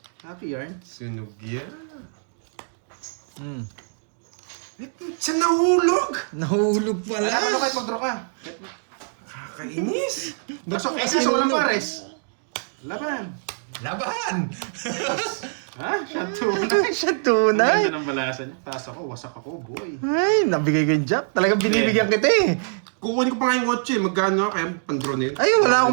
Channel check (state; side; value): silent; left; digital silence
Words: Happy yarn. Sunog yan. Siya nahulog! Nahulog pala. Ano kahit mag-draw ka? Kakainis! Ba't Pasok mo kasi kasi walang nahulog? pares. Laban. Laban! Ha? Siya tunay. Siya Ang tunay. ganda ng balasan niya. Taas ako, wasak ako, boy. Ay, nabigay ko yung jack. Talagang binibigyan kita eh. Kukunin ko pa ngayong 8 eh. Magkano kaya pang-draw na yun? Ay, wala